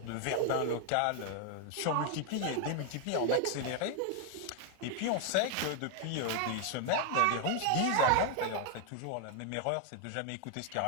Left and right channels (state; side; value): different; both; correlation 0.00